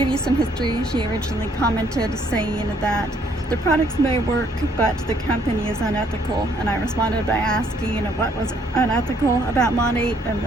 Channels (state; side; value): normal; both; correlation 0.66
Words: you some history, she originally commented saying that the products may work but the company is unethical, and I responded by asking what was unethical about Monat, and